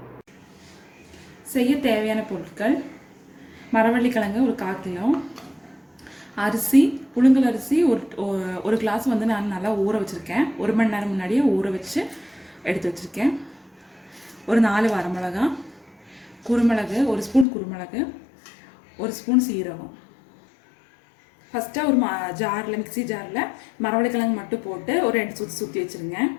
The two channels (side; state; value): right; drops out; at 17.4 s